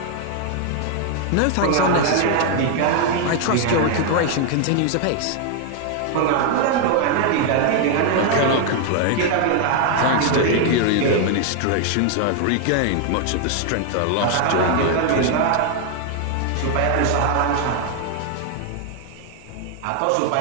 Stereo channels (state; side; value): different; both; correlation 0.00